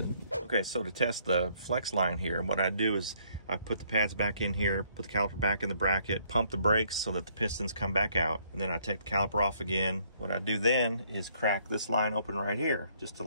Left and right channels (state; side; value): inverted; both; correlation -0.66